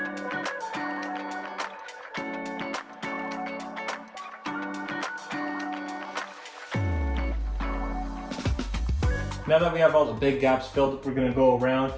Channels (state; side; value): identical; both; correlation 1.00